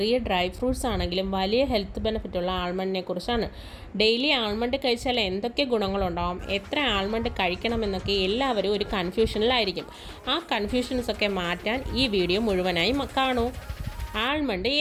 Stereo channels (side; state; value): both; identical; correlation 1.00